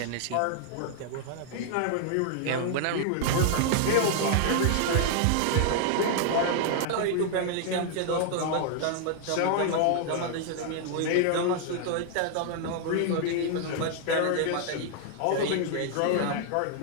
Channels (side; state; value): both; different; correlation 0.00